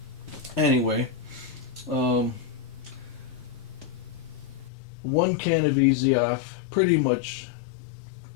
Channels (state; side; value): drops out; right; at 4.7 s